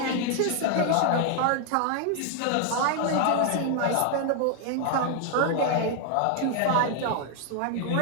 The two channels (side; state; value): both; different; correlation 0.00